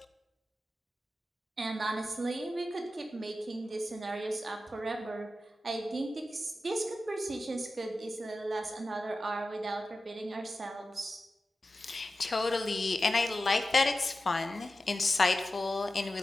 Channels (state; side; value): normal; both; correlation 0.93